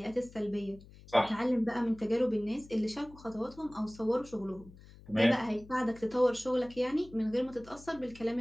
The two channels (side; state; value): left; noise; hum, 21 dB below the sound